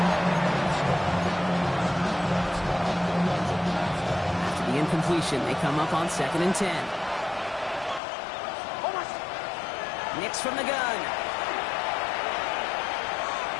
After the incompletion, they come up on second and 10. Nix from the gun.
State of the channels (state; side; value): drops out; right; at 8.0 s